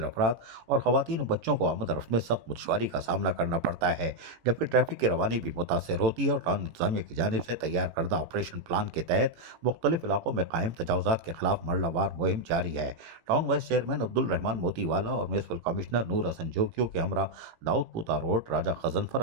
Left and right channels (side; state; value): left; late; 18 ms